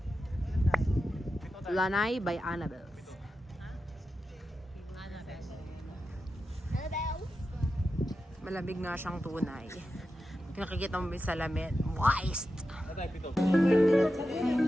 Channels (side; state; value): both; normal; correlation 0.91